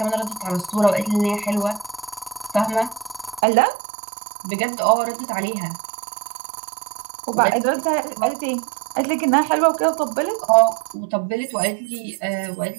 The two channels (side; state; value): left; drops out; at 3.4 s